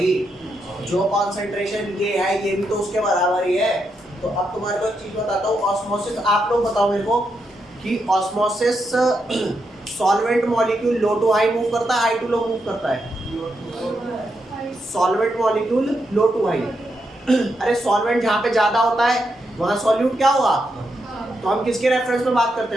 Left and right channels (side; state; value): both; normal; correlation 0.82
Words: जो कॉन्सेंट्रेशन ये है ये भी तो उसके बराबर ही है। तो अब तुम्हारे को एक चीज बताता हूँ, ऑस्मोसिस, आप लोग बताओ मेरे को कि osmosis solvent molecule low to high move करता है, हाई टू लो मूव करता है। Solvent molecule low to high. अरे सॉल्वेंट जहाँ पे ज्यादा होता है वहाँ सॉल्यूट क्या होगा, तो हम किसके रेफरेंस में बात करते